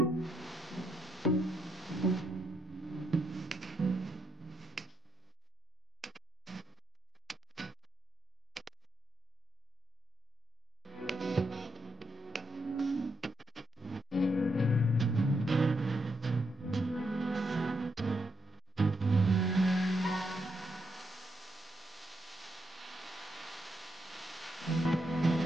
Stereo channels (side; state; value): both; normal; correlation 0.80